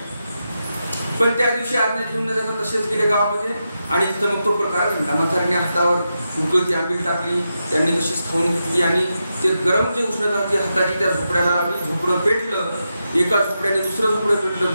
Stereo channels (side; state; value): both; inverted; correlation -0.87